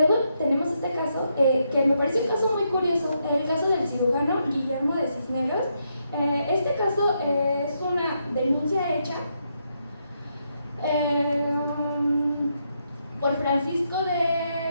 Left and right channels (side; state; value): both; inverted; correlation -0.79